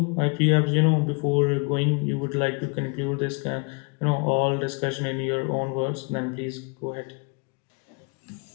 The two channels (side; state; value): right; quieter; 33.0 dB